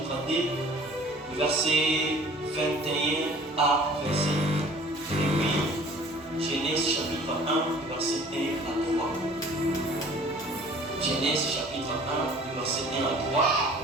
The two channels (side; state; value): both; normal; correlation 0.50